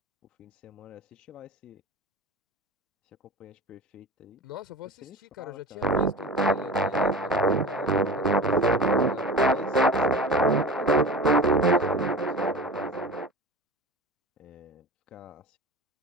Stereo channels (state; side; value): normal; both; correlation 0.34